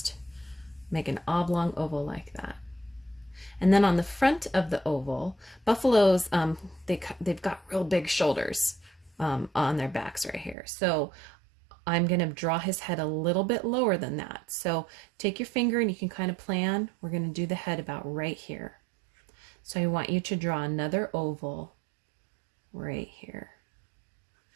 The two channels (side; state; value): left; drops out; at 10.6 s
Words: make an oblong oval like that. And then on the front of the oval, buffaloes, they've got real big shoulders on their backs right here. So I'm going to draw his head a little bit lower than that. So take your finger and you can kind of plan. We're going to do the head about right here. So I want you to draw another oval right here.